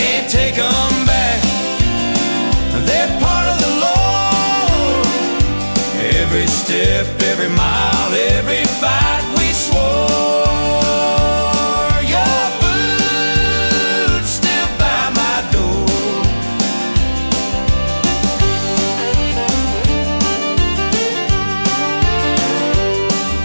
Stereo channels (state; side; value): inverted; both; correlation -1.00